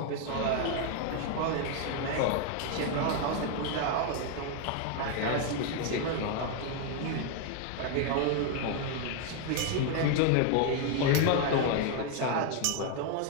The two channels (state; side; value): different; both; correlation 0.01